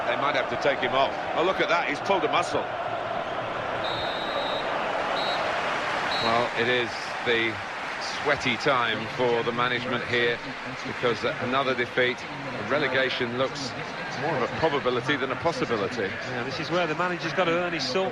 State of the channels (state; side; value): identical; both; correlation 1.00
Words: They might have to take him off. Oh, look at that, he's pulled a muscle. Well, it is the sweaty time for the management here, because another defeat, relegation looks more of a probability than a possibility. Yeah, this is where the manager's got to earn his salt,